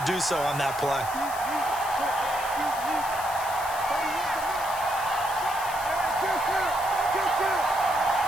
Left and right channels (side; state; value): left; noise; hiss, 12 dB below the sound